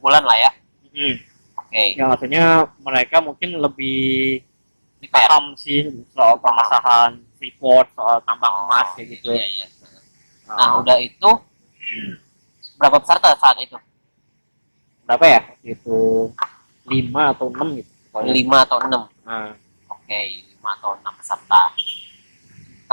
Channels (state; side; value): inverted; both; correlation -1.00